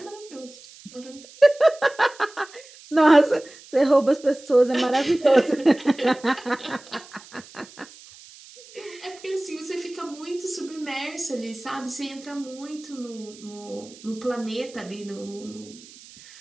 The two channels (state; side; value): noise; right; hiss, 21 dB below the sound